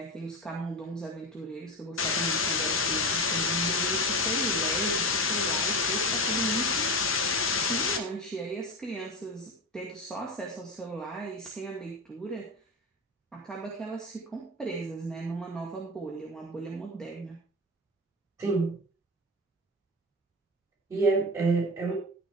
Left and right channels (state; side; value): normal; both; correlation 0.22